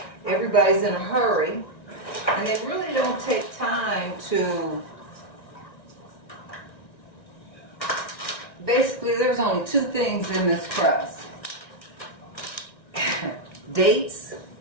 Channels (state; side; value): late; right; 1.9 ms